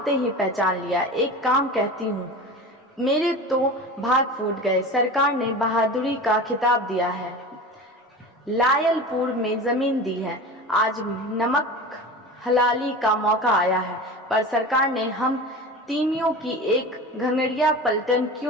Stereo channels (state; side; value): normal; both; correlation 0.32